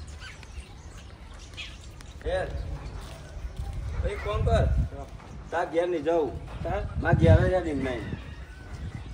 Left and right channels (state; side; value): identical; both; correlation 1.00